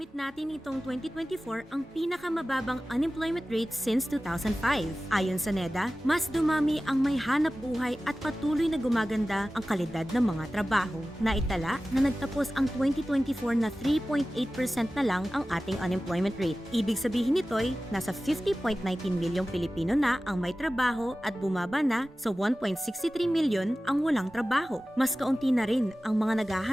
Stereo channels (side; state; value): both; normal; correlation 0.96